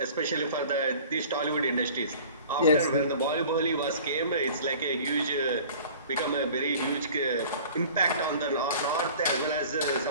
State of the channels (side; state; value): both; inverted; correlation -0.45